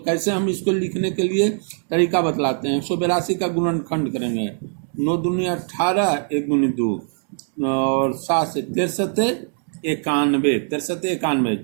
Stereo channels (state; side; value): silent; left; 58 dB below the other